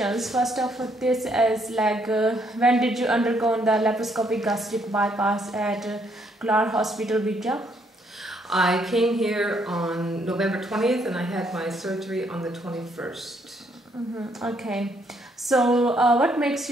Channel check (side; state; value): both; normal; correlation 0.71